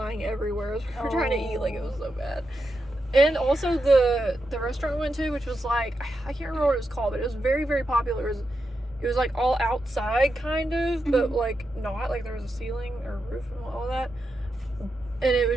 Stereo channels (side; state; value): both; normal; correlation 0.86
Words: everywhere as we were trying to eat. It was so bad. And also the restaurant we went to, which was I can't remember what it was called, but it was very, very popular. It was all outside kind of, but not there was a ceiling or roof and all that. And it